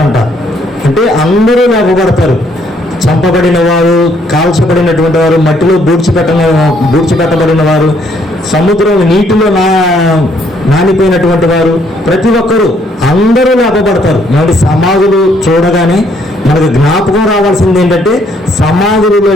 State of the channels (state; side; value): normal; both; correlation 0.68